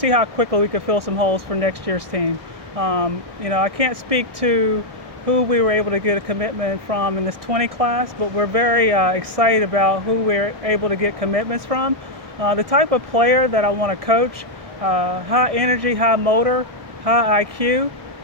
how quickly we could fill some holes for next year's team. I can't speak to who we were able to get a commitment from in this 20 class, but we're very excited about who we're able to get commitments from. The type of player that I want to coach, high energy, high motor, high IQ,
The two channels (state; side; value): late; left; 1.6 ms